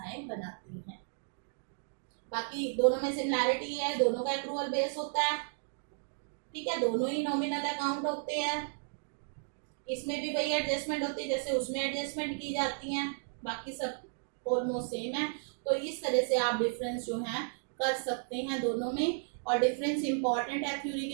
बनाती हैं। बाकी दोनों में सिमिलैरिटी है, दोनों का एक्रूअल बेस होता है। ठीक है, दोनों ही नॉमिनल अकाउंट होते हैं। इसमें भी वही एडजस्टमेंट होती है जैसे उसमें एडजस्टमेंट की जाती हैं, बाकी सब ऑलमोस्ट सेम है। तो इस तरह से आप डिफरेंस जो है कर सकते हैं दोनों में, और डिफरेंस इंपॉर्टेंट है थ्योरी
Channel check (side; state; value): left; silent; digital silence